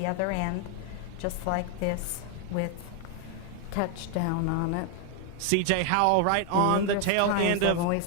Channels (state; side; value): different; both; correlation 0.01